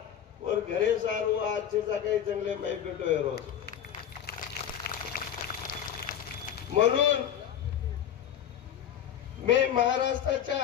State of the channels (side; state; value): right; quieter; 9.5 dB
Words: और घरे सार वो अच्छे सा काही चांगले माई पेटो आहे रोज म्हणून मी